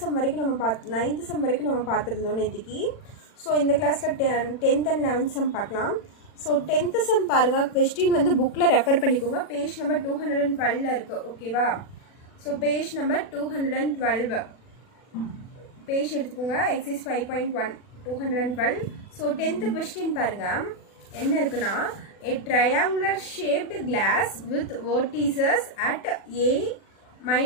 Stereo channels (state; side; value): late; right; 40 ms